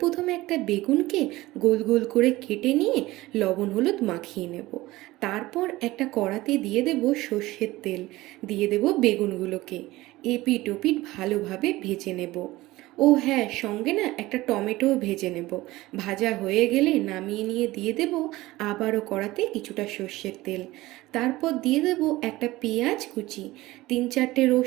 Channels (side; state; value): left; quieter; 18.5 dB